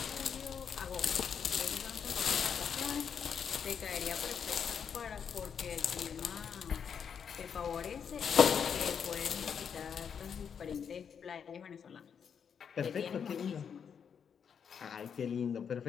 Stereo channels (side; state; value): right; quieter; 7.2 dB